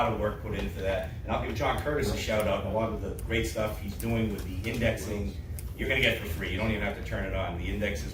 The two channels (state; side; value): identical; both; correlation 1.00